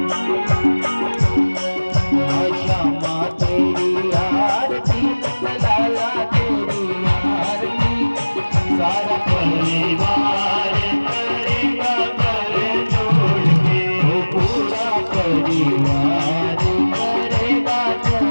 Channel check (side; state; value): both; inverted; correlation -1.00